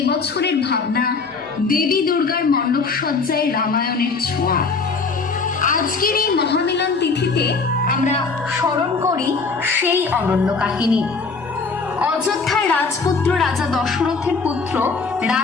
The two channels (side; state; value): right; quieter; 4.5 dB